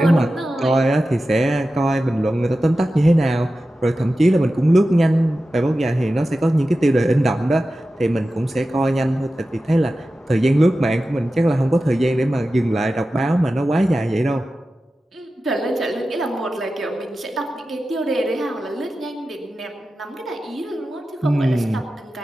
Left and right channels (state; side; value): normal; both; correlation 0.93